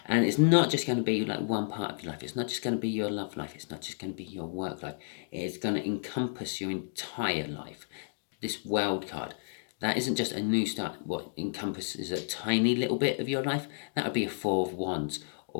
And it's not just going to be like one part of your life. It's not just going to be your love life. It's not just going to be your work life. It's going to encompass your entire life. This world card, that isn't just a new start. What encompasses a tiny little bit of your life, that would be a Four of Wands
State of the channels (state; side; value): silent; right; digital silence